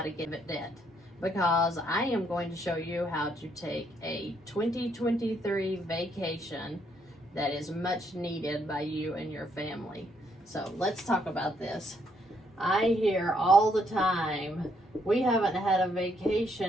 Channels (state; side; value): normal; both; correlation 0.72